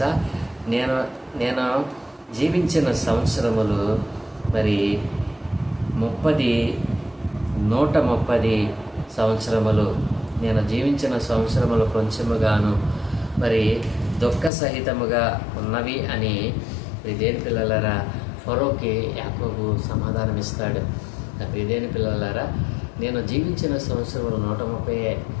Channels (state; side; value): drops out; right; at 14.5 s